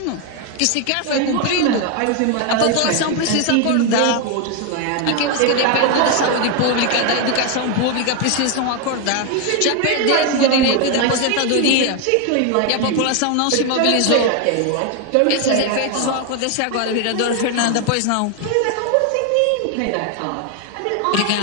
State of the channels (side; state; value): both; different; correlation 0.01